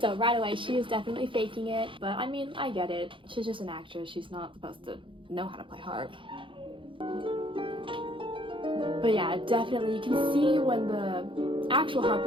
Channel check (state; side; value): late; left; 0.25 ms